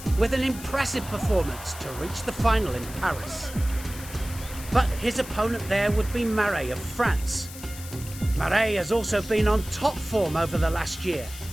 with an impressive performance to reach the final in Paris. But his opponent there would be Marais of France. Marais has also been on top form over the last year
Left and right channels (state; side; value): noise; left; hiss, 14 dB below the sound